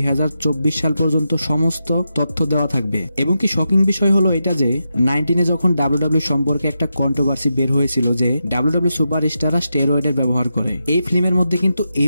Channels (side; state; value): both; inverted; correlation -0.87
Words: সাল পর্যন্ত সমস্ত তথ্য দেওয়া থাকবে। এবং কি শকিং বিষয় হলো এটা যে 19 যখন ডাব্লিউডাব্লিউ সম্পর্কে একটা কন্ট্রোভার্সি বের হয়েছিল যে ডাব্লিউডাব্লিউ সুপারস্টাররা স্টেরয়েডের ব্যবহার করে, এই ফিল্মের মধ্যে কিন্তু এই